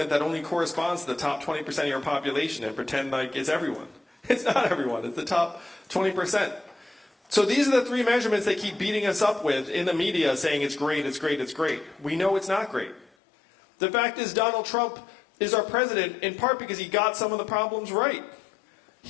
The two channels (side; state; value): right; drops out; at 13.1 s